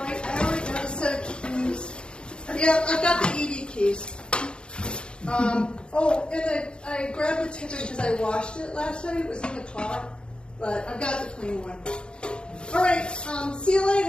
I already got a set of keys. Yeah, I've got the ED keys. Oh, and I grabbed the Tiffin because I washed it last night. It was in the car, but I've got the clean one. All right, see you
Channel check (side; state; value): right; late; 0.053 ms